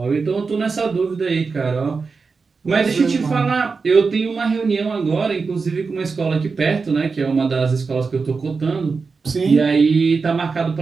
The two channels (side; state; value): left; quieter; 4.7 dB